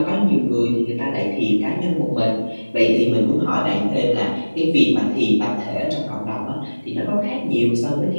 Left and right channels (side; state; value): both; inverted; correlation -1.00